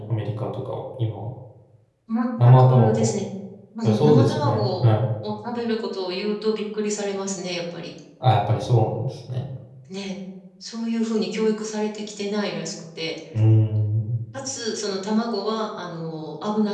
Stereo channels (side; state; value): both; identical; correlation 1.00